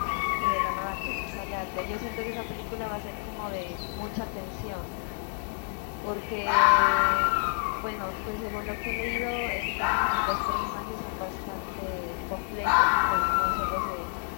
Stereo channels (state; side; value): silent; right; 56 dB below the other